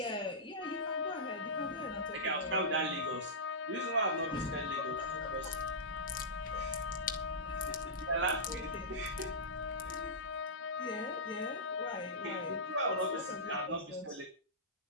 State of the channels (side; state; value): both; normal; correlation -0.15